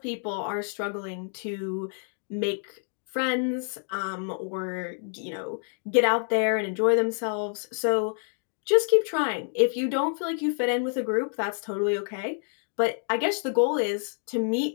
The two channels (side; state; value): right; silent; 60 dB below the other